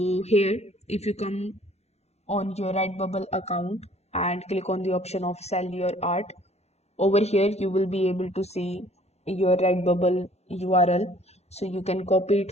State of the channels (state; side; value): late; right; 0.31 ms